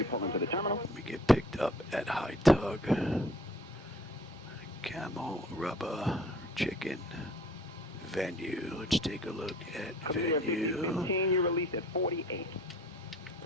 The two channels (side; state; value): both; normal; correlation 0.52